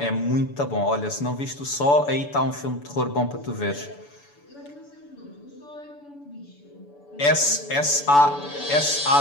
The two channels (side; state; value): right; late; 6.9 ms